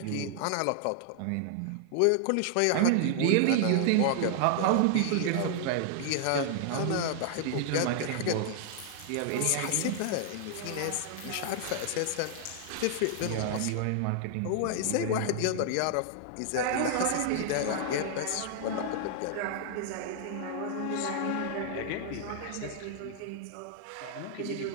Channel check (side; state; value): both; different; correlation -0.01